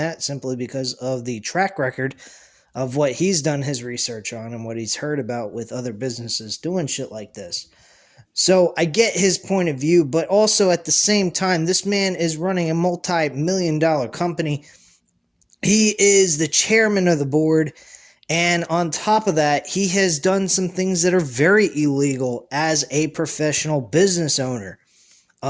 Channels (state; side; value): identical; both; correlation 1.00